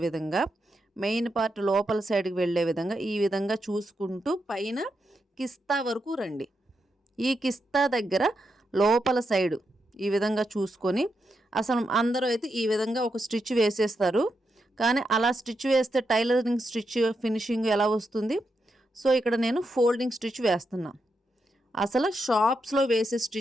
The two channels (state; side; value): normal; both; correlation 0.84